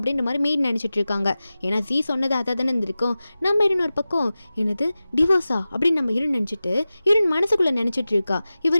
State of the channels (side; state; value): both; inverted; correlation -0.96